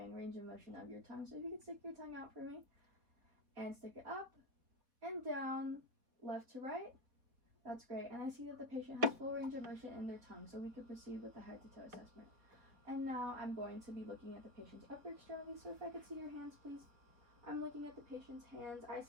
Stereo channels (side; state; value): left; late; 4.2 ms